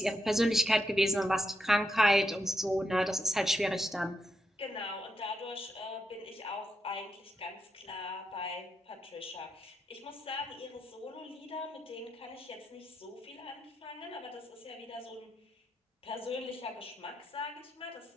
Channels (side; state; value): both; normal; correlation 0.83